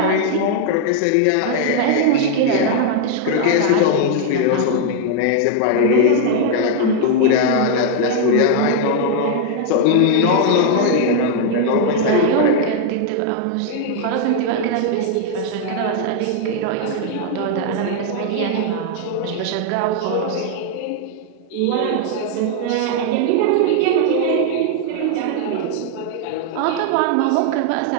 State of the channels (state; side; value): different; both; correlation 0.00